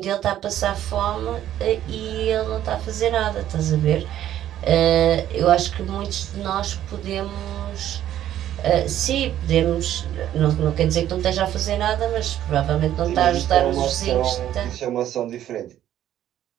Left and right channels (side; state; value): left; quieter; 11.8 dB